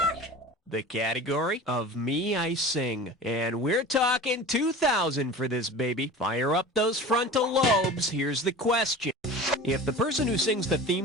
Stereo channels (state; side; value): normal; both; correlation 0.36